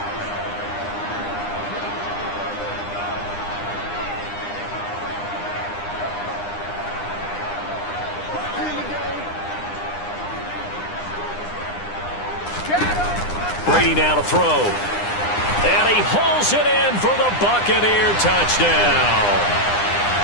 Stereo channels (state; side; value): late; right; 9.8 ms